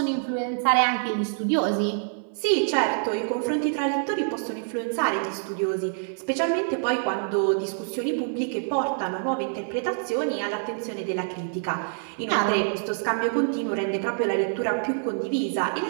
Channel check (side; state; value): left; silent; 56 dB below the other